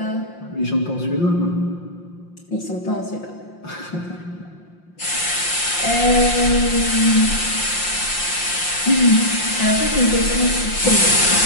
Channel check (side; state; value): right; late; 5.7 ms